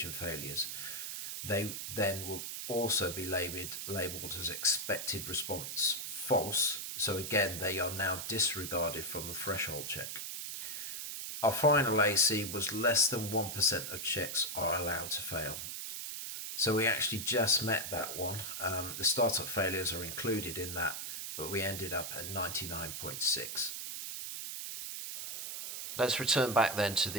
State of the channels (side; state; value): right; noise; hiss, 6 dB below the sound